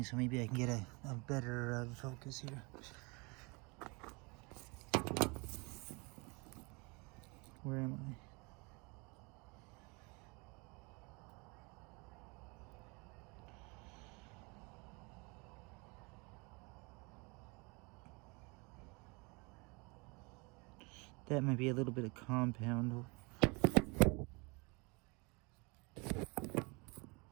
so maybe I can get a better focus here. Where am I? That might be a little bit of compound.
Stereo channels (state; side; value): quieter; left; 28.9 dB